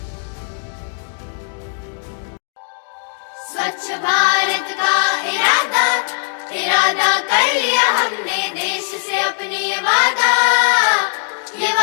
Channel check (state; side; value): silent; right; digital silence